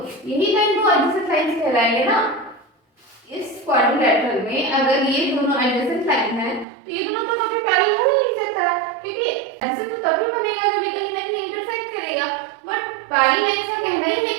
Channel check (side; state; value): left; drops out; at 6.7 s